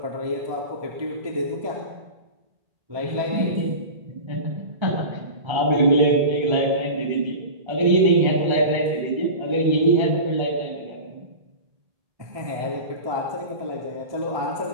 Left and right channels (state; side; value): late; left; 1.3 ms